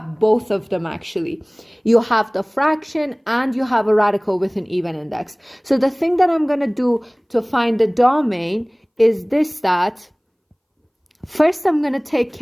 both of them actually. You have the fraction and you have a radical with an even index. So the thing that I'm going to do to find the domain is this, that first I'm going to take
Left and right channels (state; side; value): identical; both; correlation 1.00